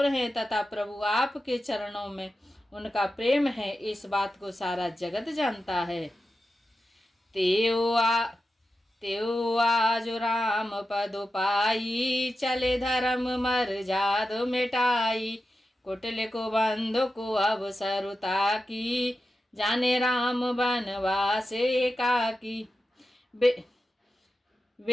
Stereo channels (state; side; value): normal; both; correlation 0.91